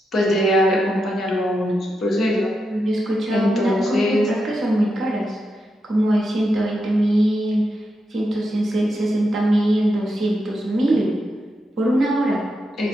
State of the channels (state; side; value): normal; both; correlation 0.86